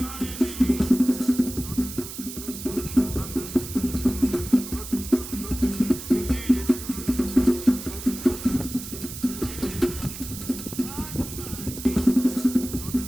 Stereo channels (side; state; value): right; noise; hiss, 10 dB below the sound